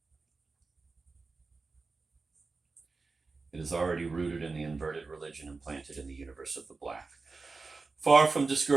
It is already rooted in the inverted religion implanted in the universe of the black. Far from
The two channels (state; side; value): quieter; left; 4.0 dB